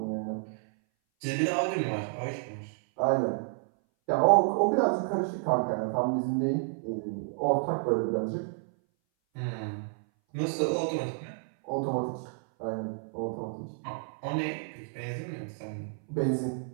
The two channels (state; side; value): silent; left; 58 dB below the other